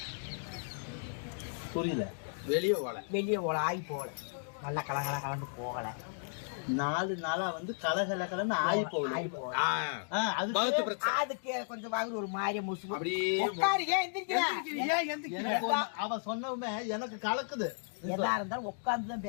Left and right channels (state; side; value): silent; right; digital silence